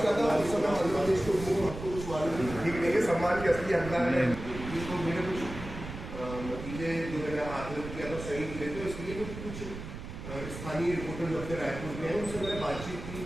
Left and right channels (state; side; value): noise; right; rumble, 10 dB below the sound